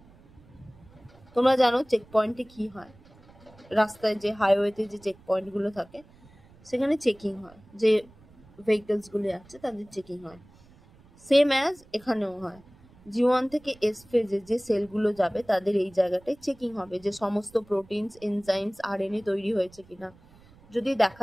তোমরা জানো চেক পয়েন্টে কি হয়? রাস্তায় যে হাইওয়েতে যে চেক পয়েন্টগুলো থাকে সেখানে চেকিং হয়, যে ভেহিকলসগুলো যাচ্ছে তাদের চেকিং হয়। সেম অ্যাজ এখানেও হয়। G1 থেকে এস ফেজে যে সেলগুলো যাবে তাদের এই জায়গাটায় চেকিং হবে যে সমস্ত প্রোটিনস এনজাইমস আরএনএ তৈরি হয়েছে কিনা। যদি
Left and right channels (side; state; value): right; noise; rumble, 26 dB below the sound